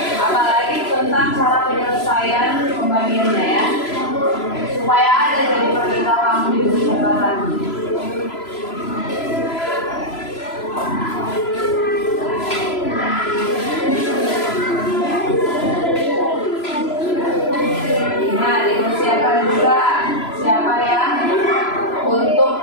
Apalagi tentang cara penyelesaian pembagiannya ya. Supaya ada jadi perintah kamu di buku catatan. Nah, dipersiapkan juga siapa yang untuk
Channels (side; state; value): right; late; 3.0 ms